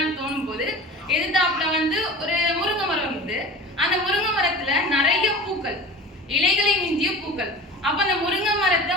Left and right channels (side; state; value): both; normal; correlation 0.36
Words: தோணும் போது எதிர்த்தாப்புல வந்து ஒரு முருங்கை மரம் இருக்குது. அந்த முருங்கை மரத்துல நிறைய பூக்கள், இலைகளை மிஞ்சிய பூக்கள். அப்ப அந்த முருங்கை மரத்தை